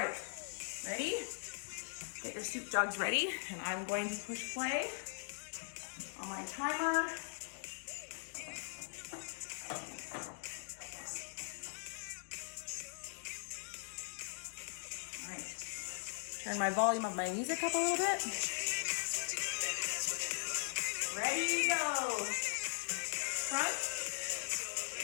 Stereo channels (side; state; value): right; silent; digital silence